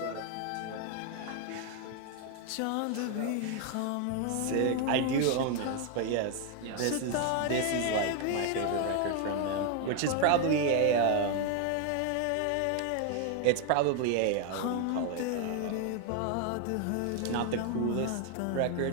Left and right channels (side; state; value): both; different; correlation 0.00